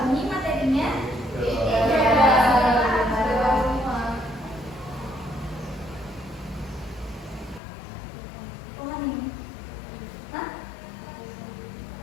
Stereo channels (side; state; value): right; drops out; at 7.6 s